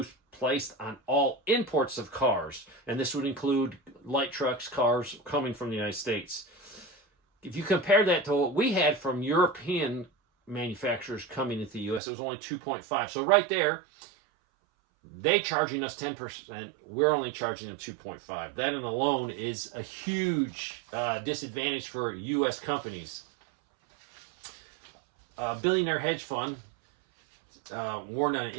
placed on all imports of cars, and this would include light trucks, cars coming from the United States. If you compare that to what we had from European manufacturers coming into the U.S., it was only 2.5. So right there, they charging us 10%, we're only charging them 2.5. That in alone is a huge disadvantage for U.S. companies. A billionaire hedge fund warned on an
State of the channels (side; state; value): left; drops out; at 12.0 s